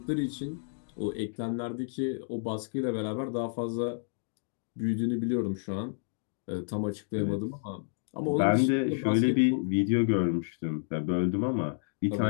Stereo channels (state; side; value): silent; right; digital silence